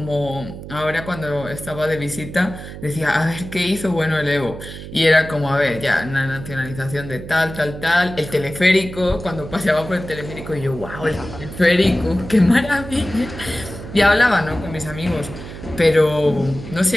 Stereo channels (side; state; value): right; noise; hum, 12 dB below the sound